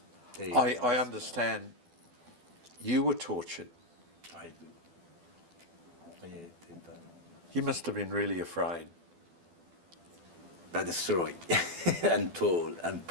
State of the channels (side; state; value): left; late; 12 ms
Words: I understand you were tortured. I do. Yeah, they done. You must have been really afraid. But destroyed and tall and